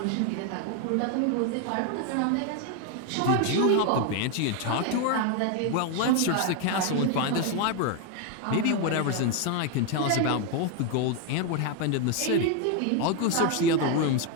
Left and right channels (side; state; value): both; different; correlation 0.01